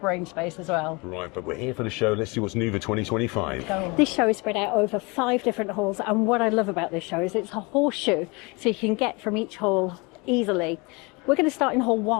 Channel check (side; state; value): right; quieter; 27.7 dB